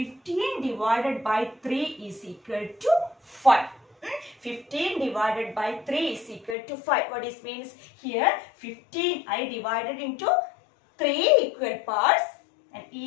divided by 3 is equal to 5. 15 divided by 3 is equal to 5. What this means? Here 15 I divided into 3 equal parts and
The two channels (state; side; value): drops out; right; at 6.6 s